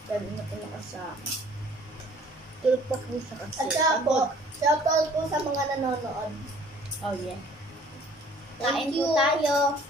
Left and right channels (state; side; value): normal; both; correlation 0.54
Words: Sabi na po nakasama. Tulog pa po siya kasi. At saka po, shoutout po sa mga nanonood. Oh yeah. Kain po tayo.